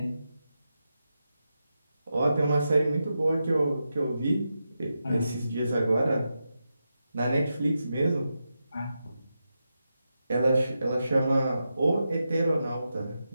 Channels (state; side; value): inverted; both; correlation -0.88